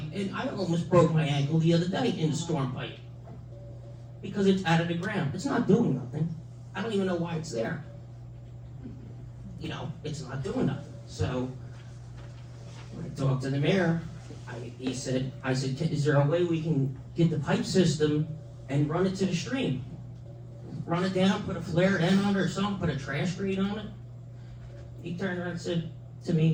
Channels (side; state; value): both; identical; correlation 1.00